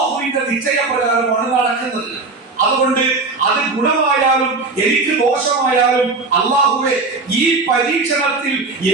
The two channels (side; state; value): left; quieter; 3.7 dB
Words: നിശ്ചയപ്രകാരമാണ് നടക്കുന്നത്. അതുകൊണ്ട് അത് ഗുണമായാലും എനിക്ക് ദോഷമായാലും അള്ളാഹുവേ ഈ പരീക്ഷണത്തിൽ